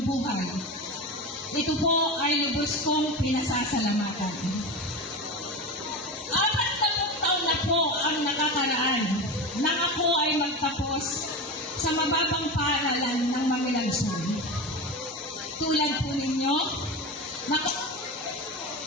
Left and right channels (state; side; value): normal; both; correlation 0.24